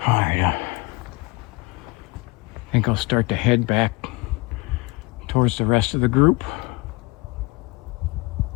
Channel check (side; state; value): right; quieter; 24.9 dB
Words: I think I'll start to head back towards the rest of the group.